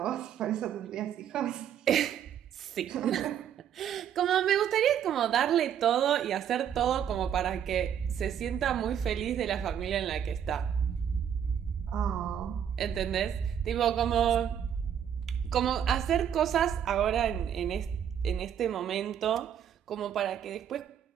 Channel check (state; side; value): quieter; left; 9.1 dB